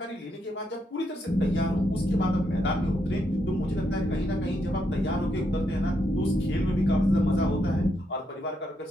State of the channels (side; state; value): both; normal; correlation 0.79